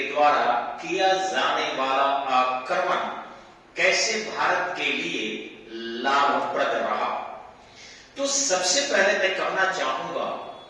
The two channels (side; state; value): both; identical; correlation 1.00